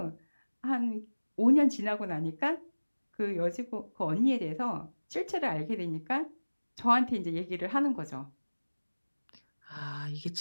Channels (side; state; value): both; inverted; correlation -1.00